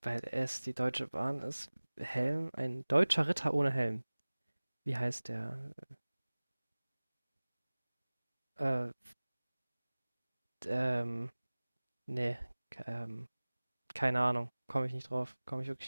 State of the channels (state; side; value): inverted; both; correlation -1.00